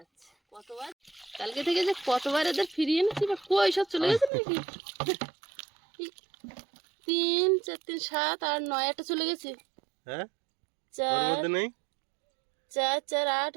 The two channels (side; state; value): left; drops out; at 4.3 s